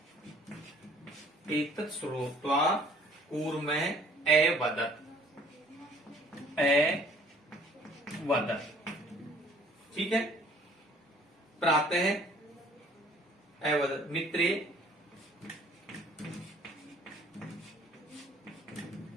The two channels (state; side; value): normal; both; correlation 0.56